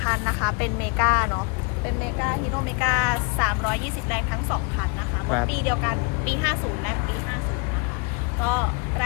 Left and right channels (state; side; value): quieter; right; 32.7 dB